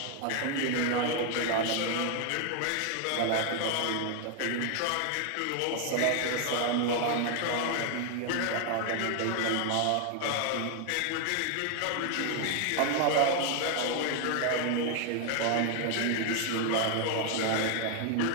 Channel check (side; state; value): both; different; correlation 0.00